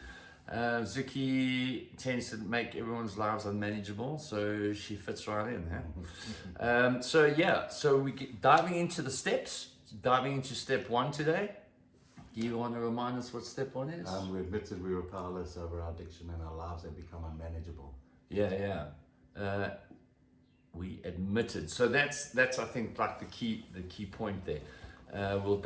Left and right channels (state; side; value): identical; both; correlation 1.00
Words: Zuki tends to make everyone's lives unmanageable, so she fits right in. So we get diving into the steps, diving into step one today. Do you want to remind us what step one is? We admitted we were powerless over our addiction and our lives had become unmanageable. We admitted. So that's I think like the key point there.